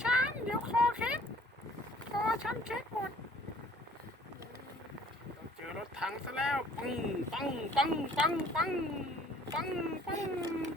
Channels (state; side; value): normal; both; correlation 0.55